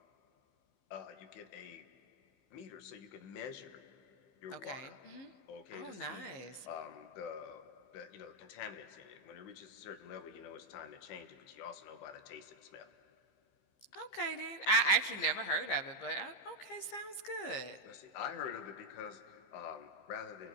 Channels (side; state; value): right; late; 15 ms